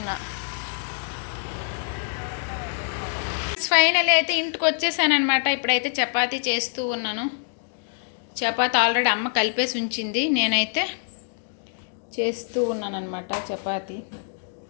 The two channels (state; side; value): silent; right; digital silence